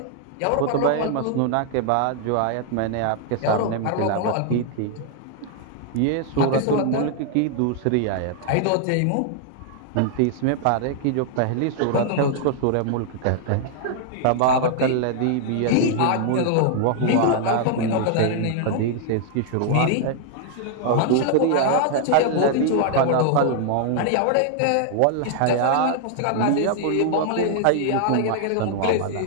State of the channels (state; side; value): different; both; correlation 0.00